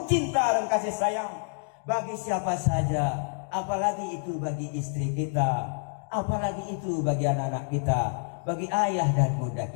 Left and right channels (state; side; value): silent; right; 59 dB below the other